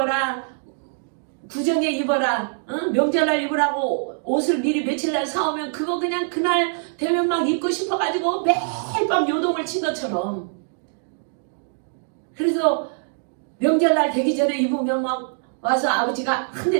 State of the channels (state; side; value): silent; left; digital silence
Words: 구정에 입어라, 명절날 입으라고 옷을 미리 며칠날 사오면 그거 그냥 그날 되면 막 입고 싶어가지고 매일 밤 요동을 친 것처럼. 그래서 명절날 되기 전에 입으면 막 와서 아버지가 한